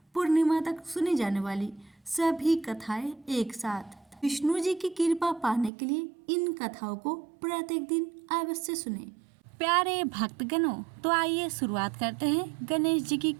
पूर्णिमा तक सुनी जाने वाली सभी कथाएं एक साथ। विष्णु जी की कृपा पाने के लिए इन कथाओं को प्रत्येक दिन अवश्य सुने। प्यारे भक्तगणों, तो आइए शुरुआत करते हैं गणेश जी की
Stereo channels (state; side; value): drops out; left; at 5.7 s